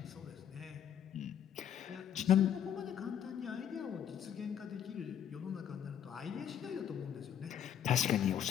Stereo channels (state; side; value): quieter; right; 9.4 dB